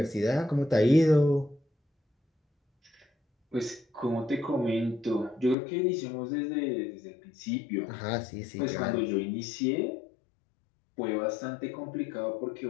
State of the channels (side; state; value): right; drops out; at 5.6 s